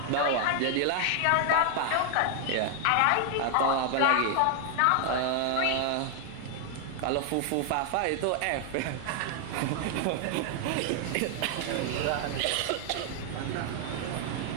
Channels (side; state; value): both; different; correlation 0.00